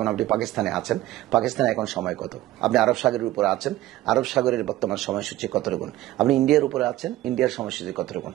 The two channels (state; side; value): quieter; left; 15.5 dB